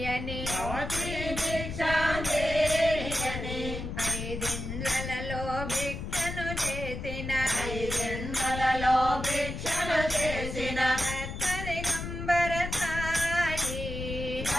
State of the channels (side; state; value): left; noise; rumble, 6 dB below the sound